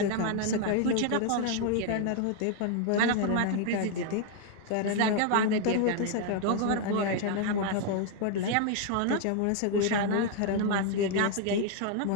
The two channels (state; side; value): different; both; correlation 0.00